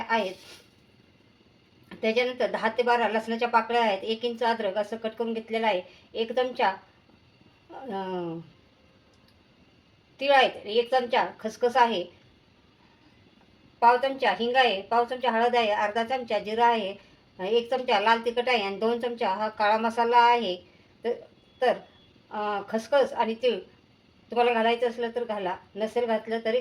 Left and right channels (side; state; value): both; identical; correlation 1.00